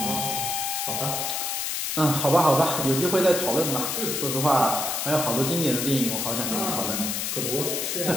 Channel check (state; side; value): noise; left; hiss, 1 dB below the sound